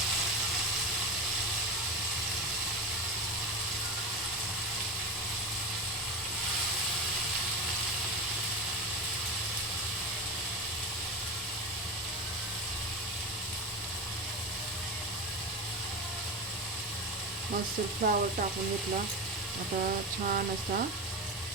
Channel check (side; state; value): both; normal; correlation 0.21